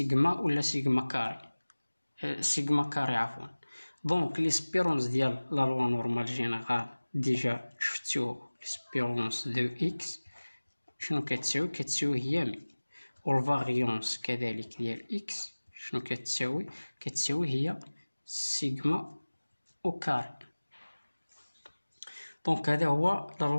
ولا سيغما كاري، سيغما كاري عفوا. دونك ليسبيرونس ديال لا لوا نورمال جينيرال ديجا شفتو ليسبيرونس دو إكس شنو كتساوي هي 100، والفاريونس كذلك ديال إكس شنو كتساوي هي سيغما أو كاري. دونك هذا هو لا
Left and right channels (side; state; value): both; inverted; correlation -1.00